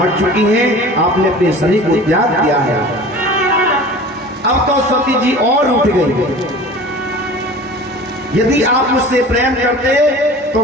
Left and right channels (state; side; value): normal; both; correlation 0.40